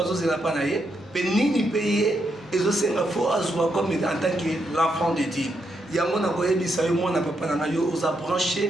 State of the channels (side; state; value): both; normal; correlation 0.80